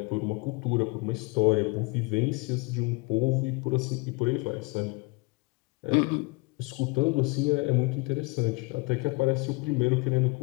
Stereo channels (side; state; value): right; quieter; 27.5 dB